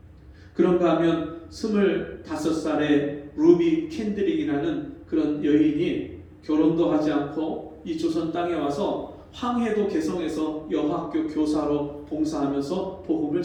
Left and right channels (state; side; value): identical; both; correlation 1.00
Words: 그런가 하면 25살의 루비 캔드릭이라는 그런 여인이 결혼도 하지 않고 이 조선 땅에 와서 황해도 개성에서 여학교 교사로 봉사하면서 복음을